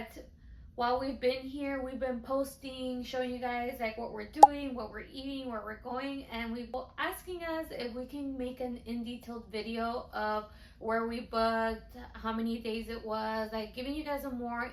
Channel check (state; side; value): identical; both; correlation 1.00